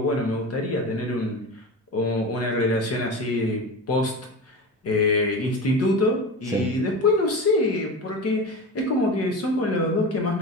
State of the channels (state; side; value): normal; both; correlation 0.28